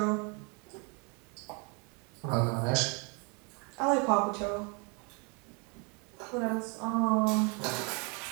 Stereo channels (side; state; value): left; quieter; 33.6 dB